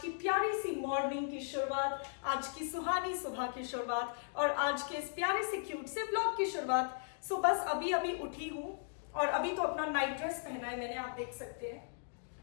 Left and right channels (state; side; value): silent; right; digital silence